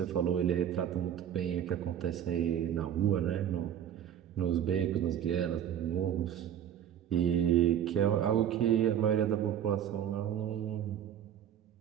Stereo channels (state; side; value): quieter; left; 9.8 dB